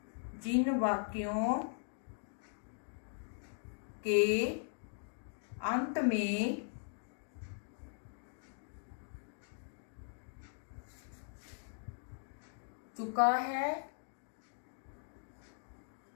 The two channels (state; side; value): silent; right; digital silence